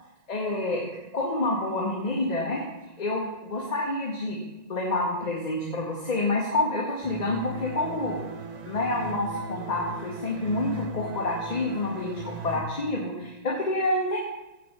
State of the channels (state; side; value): late; right; 1.9 ms